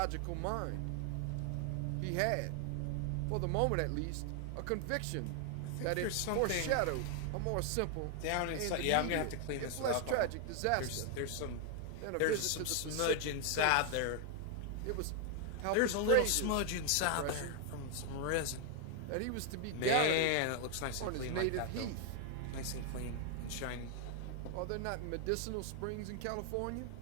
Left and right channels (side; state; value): both; different; correlation 0.00